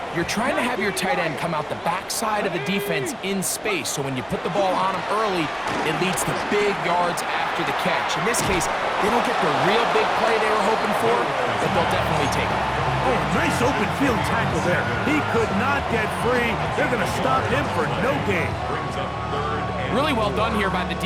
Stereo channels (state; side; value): identical; both; correlation 1.00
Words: you're trying to have your tight end come out the backside of the defense in space. So when you put the ball on him early, it leads to big yards after the catch. In this case, they don't get the real big play they were hoping for, but they'll definitely take it. Oh, nice open field tackle there. He could not get free. They're going to stop him for no gain. Brings up third and Really well done here by the